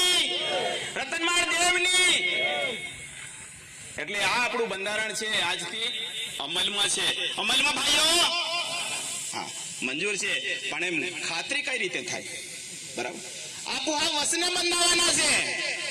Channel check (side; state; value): both; identical; correlation 1.00